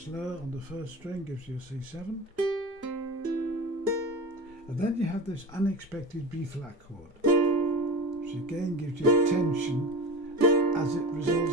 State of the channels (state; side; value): normal; both; correlation 0.29